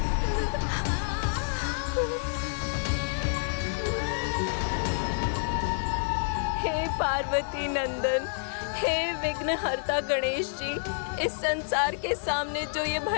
हे पार्वती नंदन, हे विघ्नहर्ता गणेश जी, इस संसार के सामने जो ये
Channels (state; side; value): silent; right; digital silence